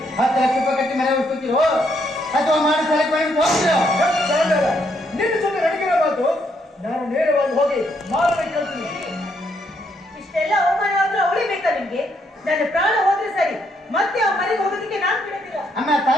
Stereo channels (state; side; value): normal; both; correlation 0.74